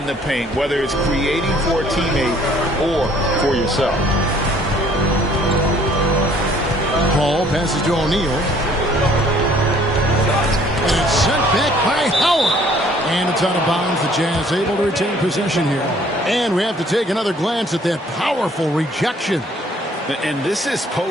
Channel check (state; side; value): normal; both; correlation 0.59